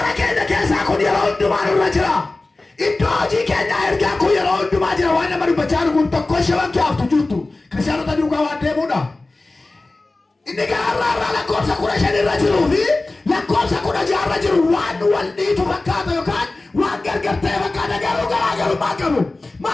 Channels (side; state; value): right; quieter; 3.1 dB